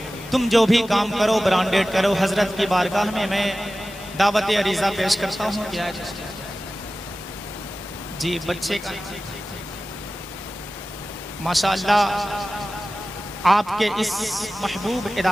तुम जो भी काम करो ब्रांडेड करो। हजरत की बारगाह में मैं दावत अरीज़ा पेश करता हूँ। क्या है जी बच्चे का माशाअल्लाह आपके इस महबूब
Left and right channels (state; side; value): normal; both; correlation 0.96